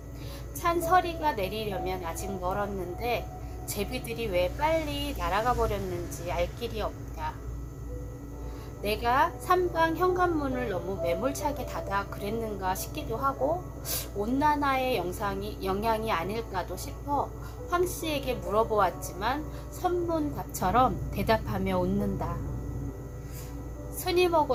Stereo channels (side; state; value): both; identical; correlation 1.00